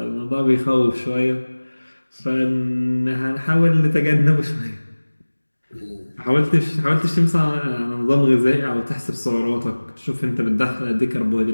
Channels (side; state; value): both; inverted; correlation -1.00